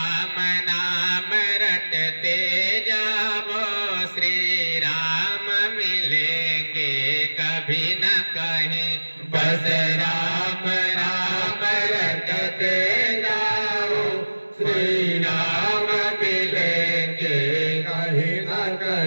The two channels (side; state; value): both; inverted; correlation -1.00